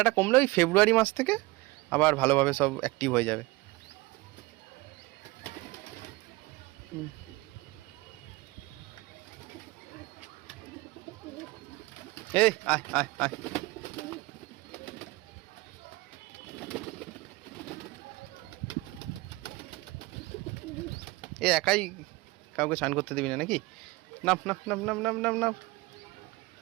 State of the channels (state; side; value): quieter; left; 22.0 dB